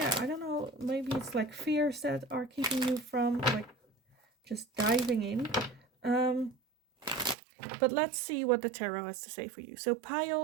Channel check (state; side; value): drops out; left; at 7.4 s